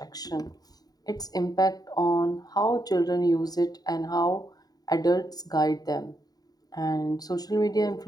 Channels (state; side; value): late; right; 0.18 ms